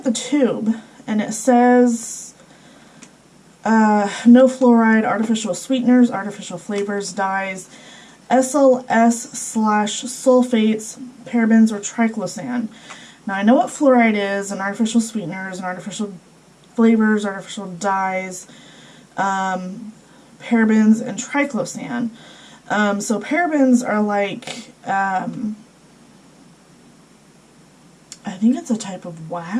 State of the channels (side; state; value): both; identical; correlation 1.00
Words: the tube, and it says no fluoride, artificial sweeteners, artificial flavors, dyes, SLS/sulfates, parabens, or triclosan. Now I know what fluoride is, and artificial sweeteners, and artificial flavors, artificial dyes, parabens, and triclosan. So parabens are like, I think it's a type of